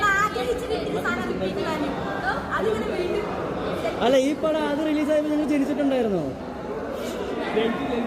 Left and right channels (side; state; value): both; identical; correlation 1.00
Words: ആഗ്രഹിച്ച് കിട്ടിയ സാധനം റിപ്പീറ്റ് വാല്യൂ അതിങ്ങനെ വീണ്ടും. അല്ല ഈ പടം അത് റിലീസായപ്പോൾ നിങ്ങൾ ജനിച്ചിട്ടുണ്ടായിരുന്നോ?